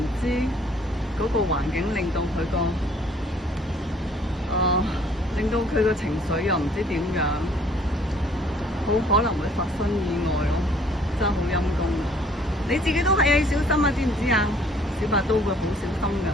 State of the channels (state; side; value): normal; both; correlation 0.59